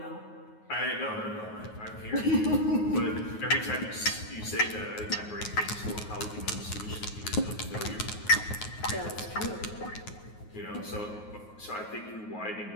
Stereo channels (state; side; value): late; right; 9.4 ms